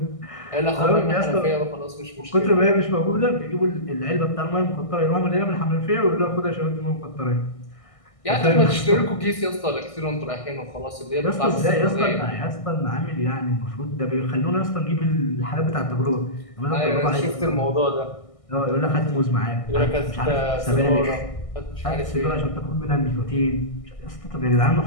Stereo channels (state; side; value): late; right; 1.6 ms